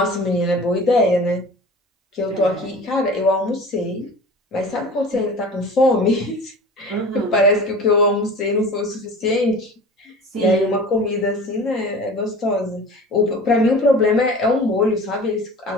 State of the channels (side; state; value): both; normal; correlation 0.39